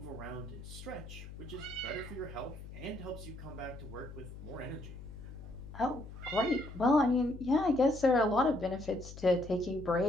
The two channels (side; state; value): left; noise; hum, 13 dB below the sound